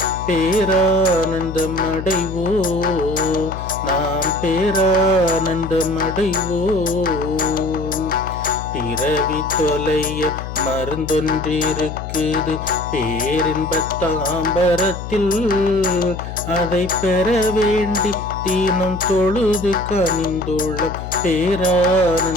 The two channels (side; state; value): left; noise; hum, 8 dB below the sound